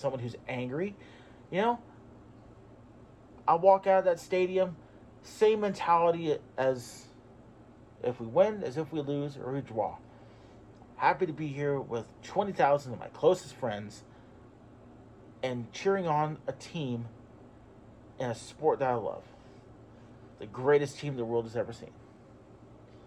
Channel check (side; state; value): both; identical; correlation 1.00